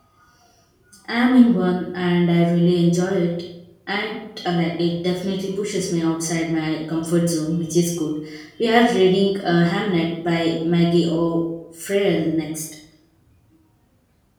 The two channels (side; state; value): both; identical; correlation 1.00